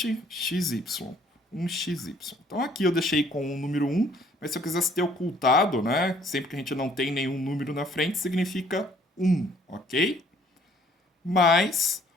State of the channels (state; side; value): normal; both; correlation 0.61